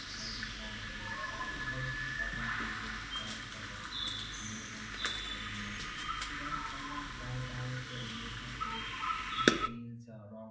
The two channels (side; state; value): both; identical; correlation 1.00